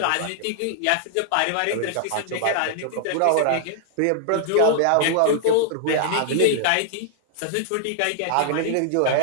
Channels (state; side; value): different; both; correlation -0.01